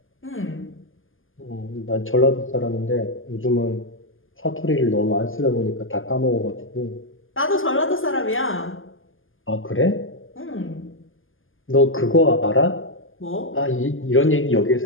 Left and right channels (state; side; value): late; right; 0.59 ms